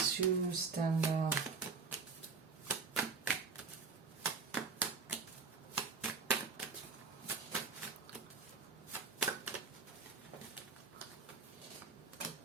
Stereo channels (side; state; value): left; quieter; 4.8 dB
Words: you stand out?